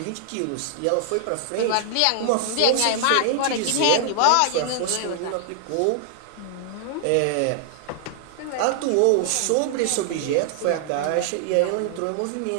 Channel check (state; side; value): different; both; correlation -0.01